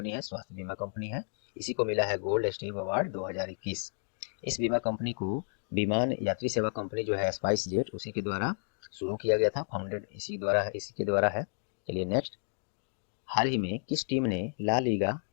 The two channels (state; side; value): silent; right; digital silence